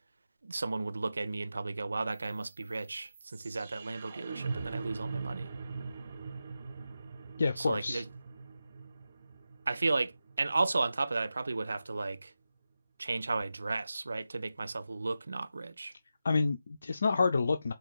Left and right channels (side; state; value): both; inverted; correlation -0.91